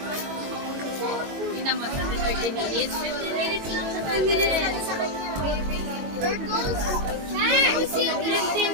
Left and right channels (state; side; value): late; left; 22 ms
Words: Tingnan mo, 30 minutes. 15 minutes lang sa 15 minutes sa kanya. Turtles?